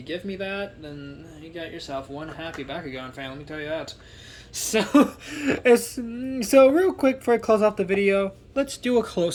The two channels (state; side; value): identical; both; correlation 1.00